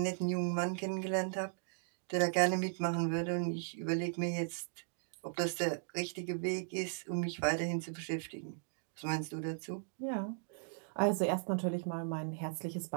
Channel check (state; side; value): silent; left; digital silence